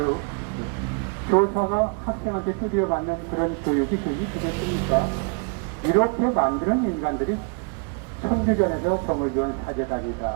교사가 학생한테 두드려 맞는 그런 교육이 되겠습니까? 이렇게 만드는 인간들이 천주변에서 정의교원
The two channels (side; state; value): left; quieter; 38.4 dB